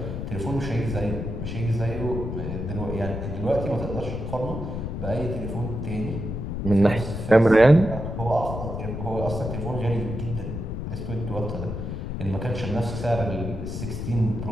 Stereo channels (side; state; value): left; noise; rumble, 5 dB below the sound